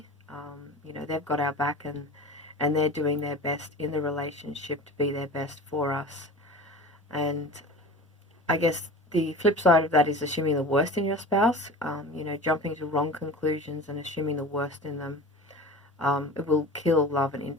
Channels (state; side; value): normal; both; correlation 0.36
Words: They've got our back, and they're doing their best in the relationship to be their best for us. And I guess the flip side of that is assuming the worst in your spouse, jumping to wrong conclusions and assuming the worst in them. It will kill love and